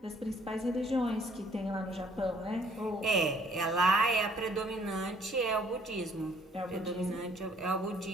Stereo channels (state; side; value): normal; both; correlation 0.61